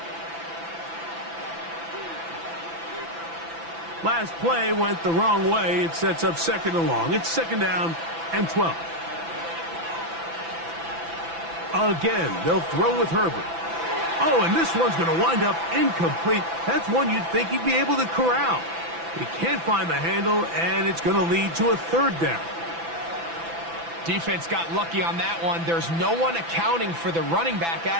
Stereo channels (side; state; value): left; late; 6.0 ms